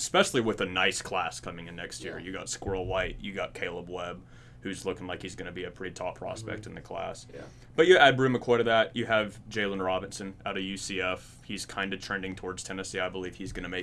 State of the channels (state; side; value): identical; both; correlation 1.00